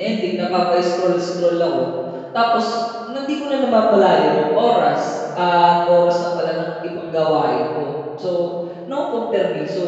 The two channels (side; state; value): both; identical; correlation 1.00